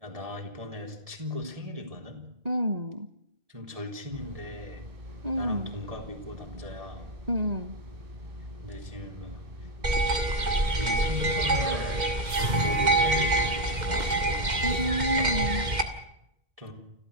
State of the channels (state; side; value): late; left; 2.1 ms